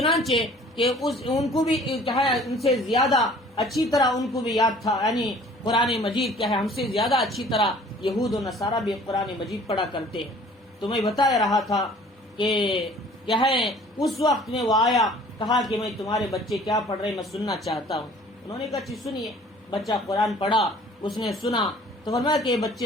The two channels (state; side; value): normal; both; correlation 0.51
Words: کہ ان کو بھی کیا ہے، ان سے زیادہ اچھی طرح ان کو بھی یاد تھا، یعنی قرآن مجید کیا ہے، ہم سے زیادہ اچھی طرح یہود و نصارہ بھی قرآن مجید پڑھا کرتے ہیں۔ تو میں بتا رہا تھا کہ کیا ہے، اس وقت میں وہ آیا، کہا کہ میں تمہارے بچے کیا پڑھ رہے میں سننا چاہتا ہوں۔ انہوں نے کہا اچھی سنیے۔ بچہ قرآن پڑھا، اس نے سنا، تو فرمایا کہ